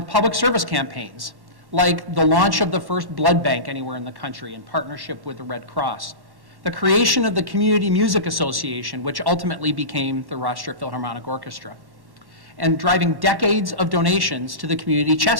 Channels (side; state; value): left; late; 1.1 ms